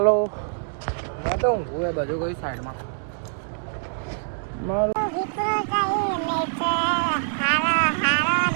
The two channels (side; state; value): left; silent; digital silence